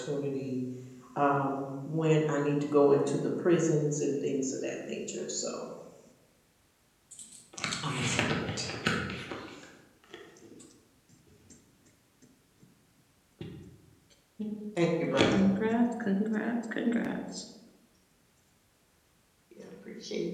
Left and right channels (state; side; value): identical; both; correlation 1.00